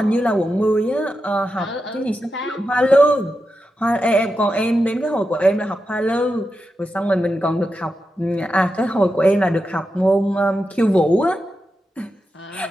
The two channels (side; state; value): both; normal; correlation 0.89